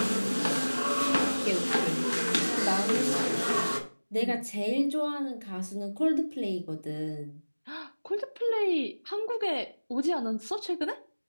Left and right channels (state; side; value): inverted; both; correlation -1.00